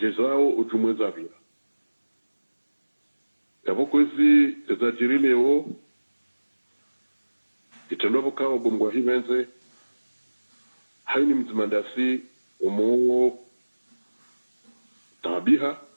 zao ujumweza vila yavoko hizi ezajiri leo itendo vokao bomgwa hivenze haini mzimandasi umo tabiha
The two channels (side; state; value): both; inverted; correlation -1.00